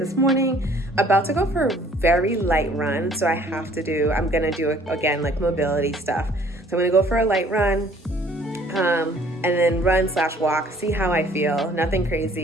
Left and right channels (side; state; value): both; normal; correlation 0.57